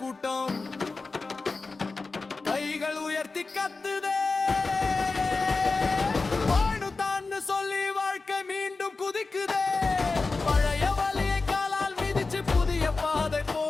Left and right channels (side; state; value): right; quieter; 3.9 dB